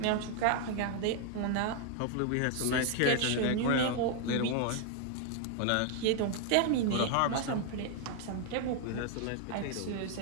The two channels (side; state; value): both; different; correlation 0.00